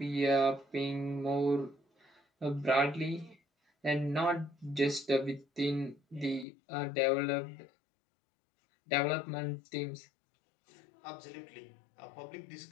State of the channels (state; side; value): drops out; right; at 6.5 s